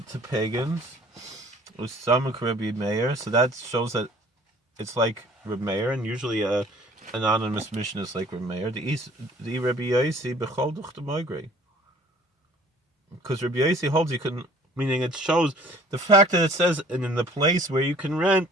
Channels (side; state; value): both; normal; correlation 0.53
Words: to pagans. So that shows that it's like Reb Meir, and usually an anonymous mission is like Reb Meir. The Rabbi Yossi bechol duch the migrate. Because Rabbi Yossi holds you can, meaning it shows the fact that it says and in the place where you can